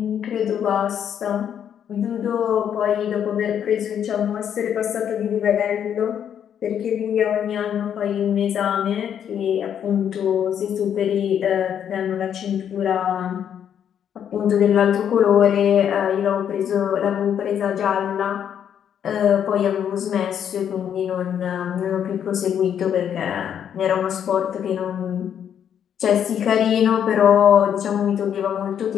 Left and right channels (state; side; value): quieter; right; 8.9 dB